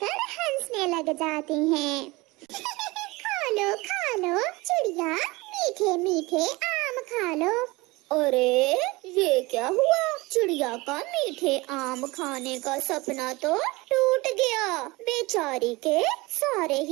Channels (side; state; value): left; quieter; 22.8 dB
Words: हंसने लग जाते हैं। खा लो चिड़िया, मीठे मीठे आम खा लो। अरे ये क्या हुआ? चिड़िया का मीठे आम खाने का सपना तो टूट गया। बेचारी के सारे